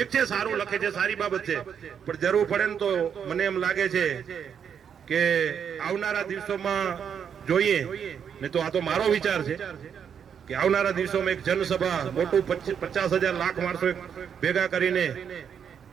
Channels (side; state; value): left; quieter; 7.8 dB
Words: છે સારું લખે છે સારી બાબત છે પણ જરૂર પડે ને તો મને એમ લાગે છે કે આવનારા દિવસોમાં જોઈએ ને તો આ તો મારો વિચાર છે કે આવનારા દિવસોમાં એક જનસભા મોટું 50,000 લાખ માણસો ભેગા કરીને